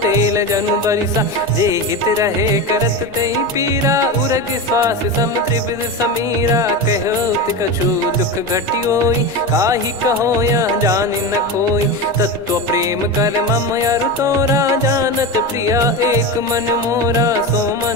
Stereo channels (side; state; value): left; noise; rumble, 28 dB below the sound